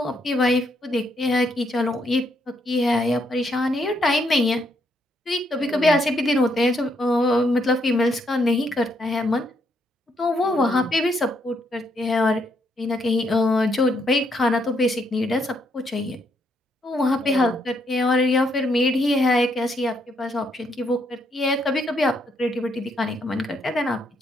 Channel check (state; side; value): normal; both; correlation 0.74